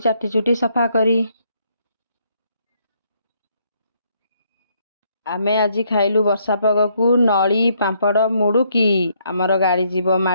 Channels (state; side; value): inverted; both; correlation -0.71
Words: चुटी सफा करी। आमे आज खाइलु वर्षा पागकू नली पांपड़ मुड़ुकी आमर गाड़ी जीव